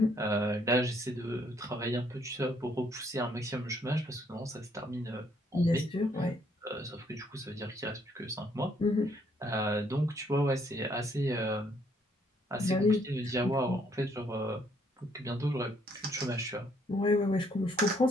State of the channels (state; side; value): normal; both; correlation 0.68